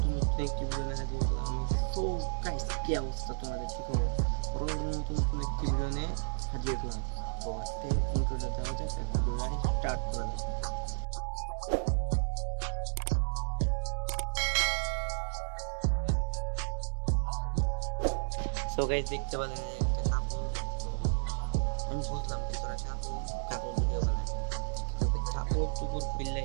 নতুন একটি ভিডিও নিয়ে হাজির হলাম আমি। সো গাইস, কি অবস্থা, তোমাদের কি খবর? বড় বড় মতন নতুন একটি ভিডিও নিয়ে হাজির হলাম। তো আজকে ইন্ট্রোটা দেওয়া যাক আর ভিডিওটা স্টার্ট করা যাক। সো গাইস, দেখতে পেলেন একটা কাপল। তো আমি বুঝলাম ভাই তোরা কাপল কাপল ভিডিও বানা, কিন্তু ভাই কাপড় টুপড় খুললে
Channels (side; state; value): left; silent; 55 dB below the other